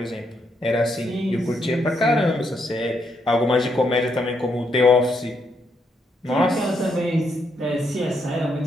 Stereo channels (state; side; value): normal; both; correlation 0.77